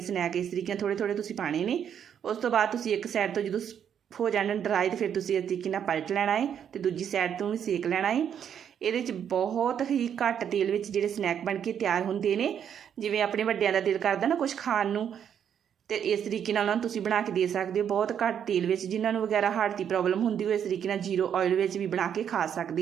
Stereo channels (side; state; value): left; quieter; 8.6 dB